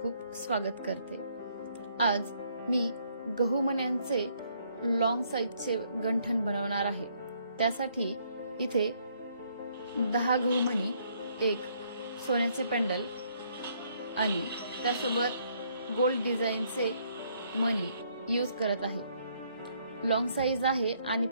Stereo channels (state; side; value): inverted; both; correlation -0.69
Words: स्वागत करते। आज मी गहू मण्यांचे लॉंग साइजचे गंठण बनवणार आहे। त्यासाठी इथे 10 गहू मणी, एक सोन्याचे पेंडल आणि त्यासोबत गोल्ड डिझाइनचे मणी यूज करत आहे। लॉंग साइज आहे आणि